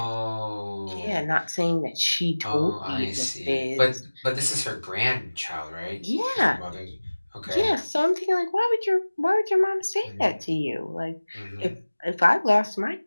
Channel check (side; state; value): both; inverted; correlation -1.00